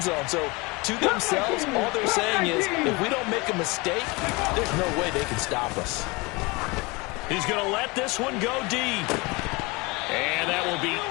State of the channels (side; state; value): right; quieter; 25.6 dB